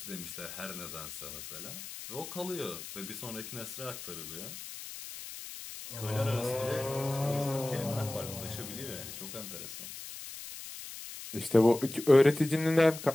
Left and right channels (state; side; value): noise; left; hiss, 11 dB below the sound